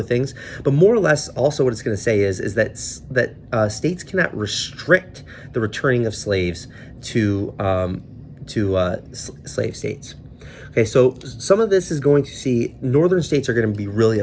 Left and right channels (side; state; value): both; identical; correlation 1.00